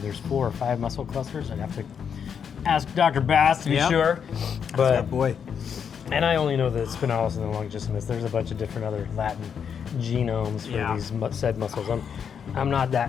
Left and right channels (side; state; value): right; quieter; 7.3 dB